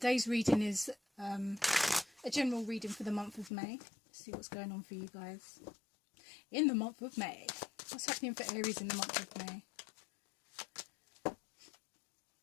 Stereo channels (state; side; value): drops out; right; at 3.5 s